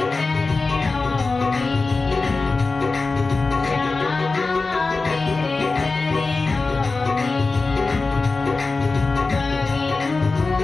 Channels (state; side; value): quieter; right; 3.8 dB